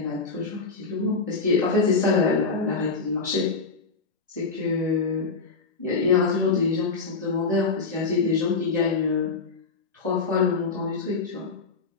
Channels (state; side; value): quieter; right; 4.4 dB